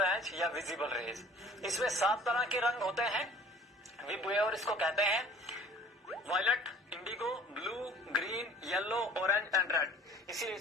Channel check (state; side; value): normal; both; correlation 0.49